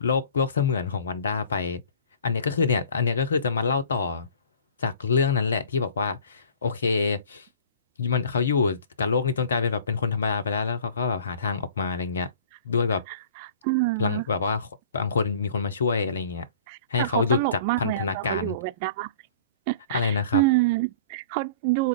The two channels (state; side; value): inverted; both; correlation -0.45